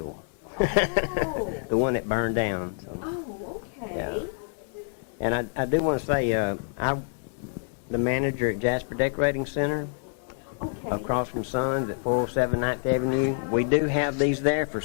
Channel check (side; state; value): right; silent; 60 dB below the other